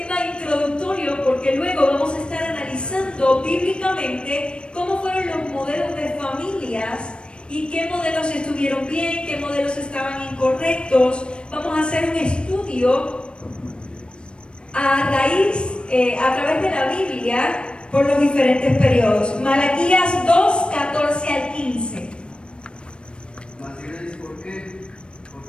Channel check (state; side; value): late; right; 0.055 ms